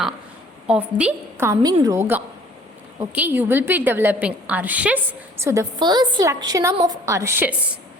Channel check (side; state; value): both; normal; correlation 0.53